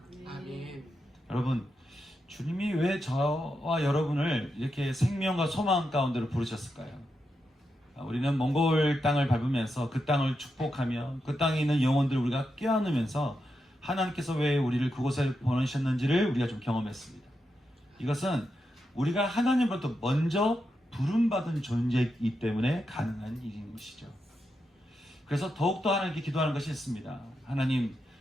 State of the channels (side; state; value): both; normal; correlation 0.86